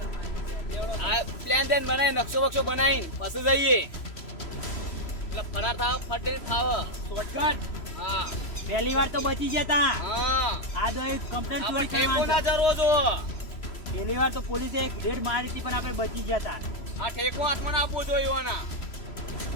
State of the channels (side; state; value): right; late; 3.0 ms